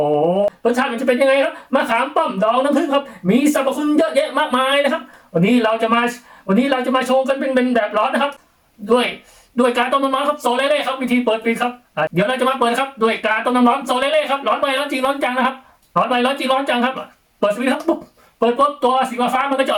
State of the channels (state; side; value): identical; both; correlation 1.00